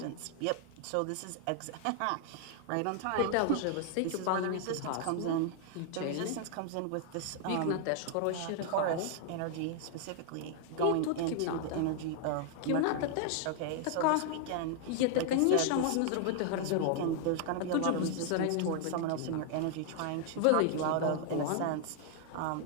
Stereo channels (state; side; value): different; both; correlation 0.00